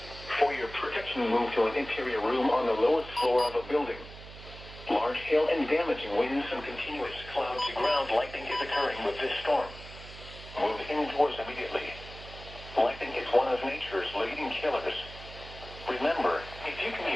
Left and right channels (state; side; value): noise; right; hum, 15 dB below the sound